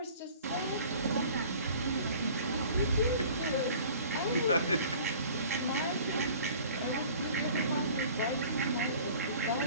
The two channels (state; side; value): inverted; both; correlation -0.47